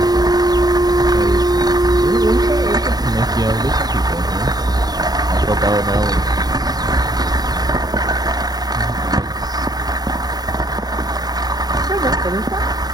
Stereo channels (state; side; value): late; left; 0.19 ms